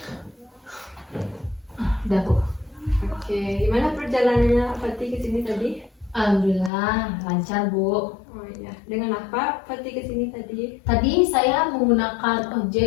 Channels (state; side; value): drops out; right; at 6.7 s